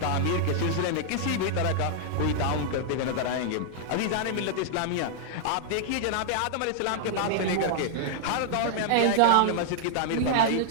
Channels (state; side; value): different; both; correlation -0.01